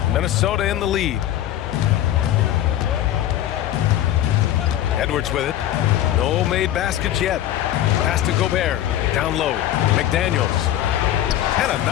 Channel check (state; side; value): quieter; right; 12.3 dB